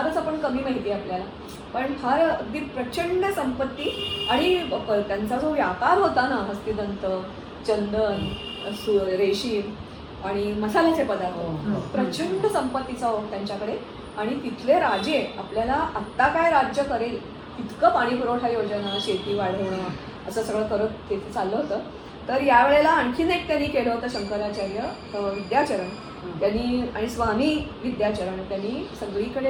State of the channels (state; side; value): identical; both; correlation 1.00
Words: आपण कमी माहिती आहे आपल्याला, पण फार अगदी प्रचंड संपत्ती. आणि त्यांचा जो व्यापार होता ना, हस्तिदंत, चंदन, रेशीम आणि मसाल्याचे पदार्थ, प्रचंड संपत्तीचा त्यांच्याकडे. आणि तिथले राजे आपल्याला आत्ता काय राज्य करेल इतकं पाणी पुरवठा योजना, शेती वाढवणं असं सगळं करत तिथे चाललं होतं. तर यावेळेला आणखीन एक त्यांनी केलं होतं शंकराचार्य विद्याचरण त्यांनी आणि स्वामी विद्याचरण त्यांनी